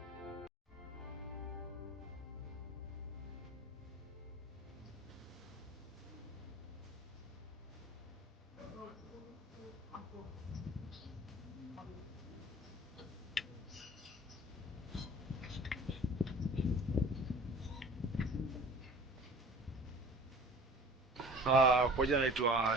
Kwa jina naitwa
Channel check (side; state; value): both; normal; correlation 0.45